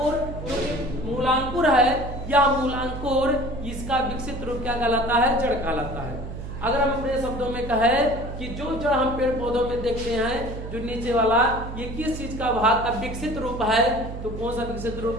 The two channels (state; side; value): noise; right; hum, 8 dB below the sound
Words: जो मूलांकुर है या मूलांकुर, इसका विकसित रूप क्या कहलाता है, जड़ कहलाता है। अगर हम अपने शब्दों में कहें कि जो जड़ हम पेड़ पौधों में देखते हैं, जो नीचे वाला, ये किस चीज का भाग का विकसित रूप है, तो कौन सा विकसित